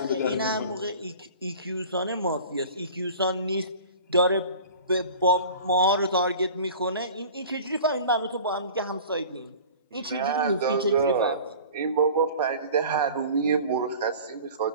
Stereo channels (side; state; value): both; inverted; correlation -0.42